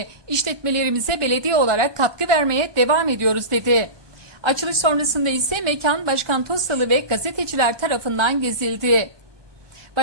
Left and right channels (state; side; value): late; left; 1.2 ms